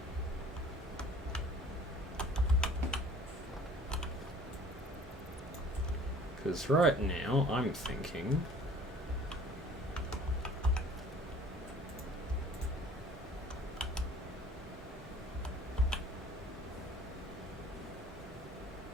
Because right now, I'm thinking...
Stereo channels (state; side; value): normal; both; correlation 0.50